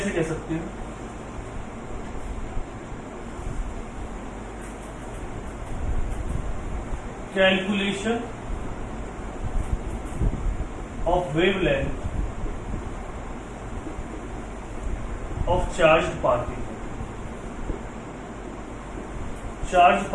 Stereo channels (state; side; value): identical; both; correlation 1.00